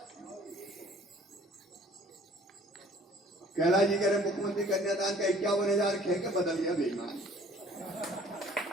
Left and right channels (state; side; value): normal; both; correlation 0.53